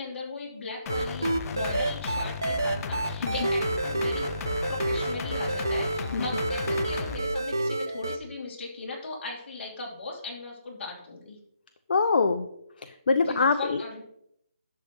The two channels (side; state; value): both; inverted; correlation -0.75